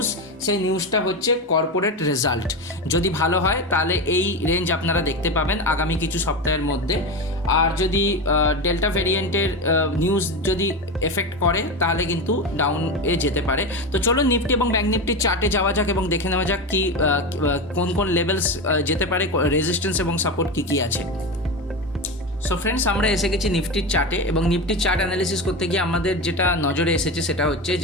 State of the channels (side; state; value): both; normal; correlation 0.20